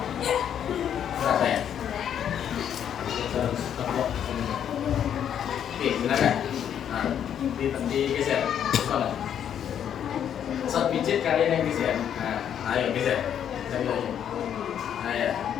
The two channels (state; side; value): quieter; right; 9.2 dB